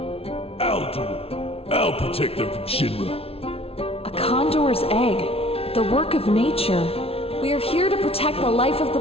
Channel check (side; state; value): right; late; 0.28 ms